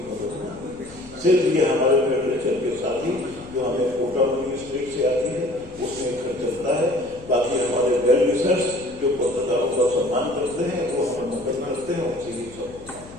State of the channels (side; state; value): left; noise; hum, 20 dB below the sound